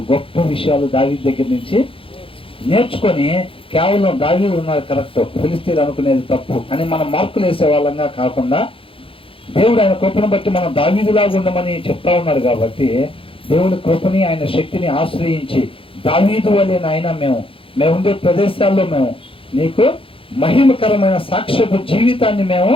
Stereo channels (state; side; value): late; right; 0.26 ms